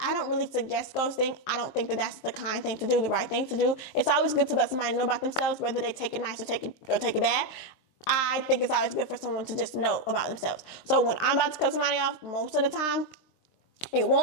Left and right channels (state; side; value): late; right; 23 ms